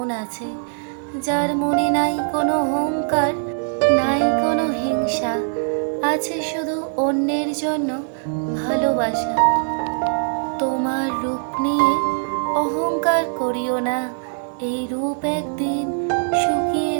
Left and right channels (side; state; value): left; silent; digital silence